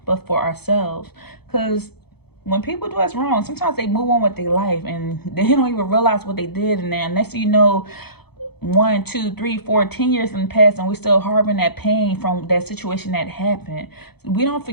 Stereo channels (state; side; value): late; right; 0.97 ms